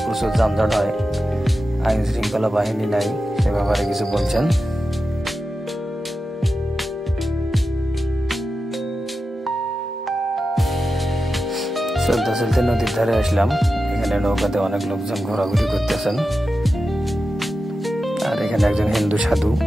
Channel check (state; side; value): normal; both; correlation 0.91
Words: প্রচুর যানজট হয়, আইন শৃঙ্খলা বাহিনী নাই, সে ব্যাপারে কিছু বলছেন। চলতে চলতে নদীর ধারে আসলাম। এখানে নৌকাতে অনেক লোকজন ঘোরাঘুরি করতেছেন। আর এখানে একজন হিন্দু সাধু